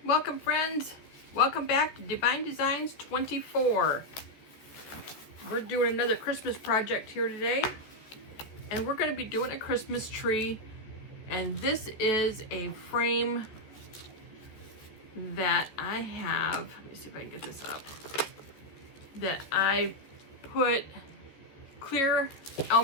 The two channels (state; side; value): late; right; 14 ms